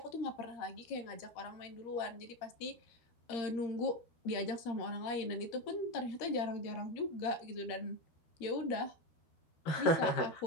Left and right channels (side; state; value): right; late; 13 ms